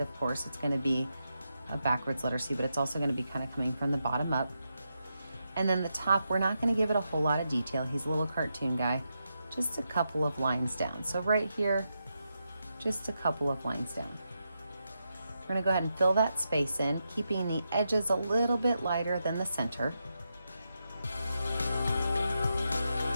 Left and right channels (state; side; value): inverted; both; correlation -0.85